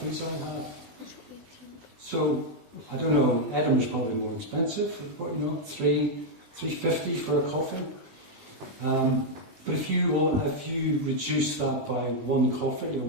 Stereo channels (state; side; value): late; left; 20 ms